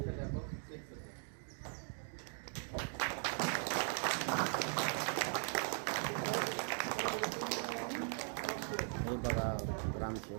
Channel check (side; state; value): left; silent; 51 dB below the other